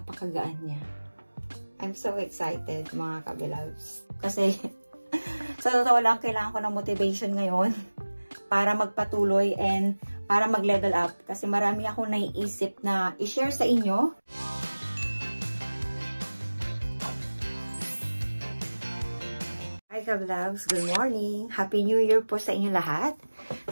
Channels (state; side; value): inverted; both; correlation -1.00